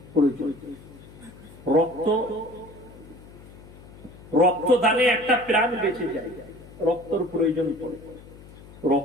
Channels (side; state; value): left; noise; hum, 19 dB below the sound